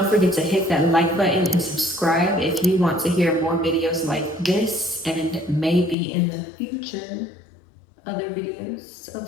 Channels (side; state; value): right; drops out; at 6.0 s